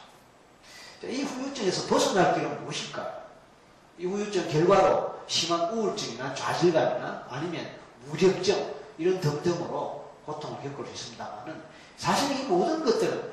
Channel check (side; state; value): both; identical; correlation 1.00